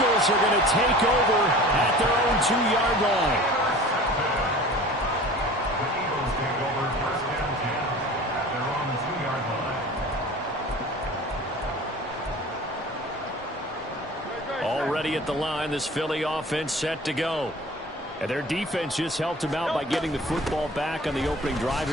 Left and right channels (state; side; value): normal; both; correlation 0.42